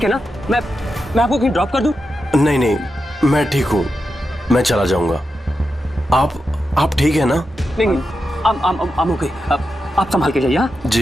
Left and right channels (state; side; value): normal; both; correlation 0.88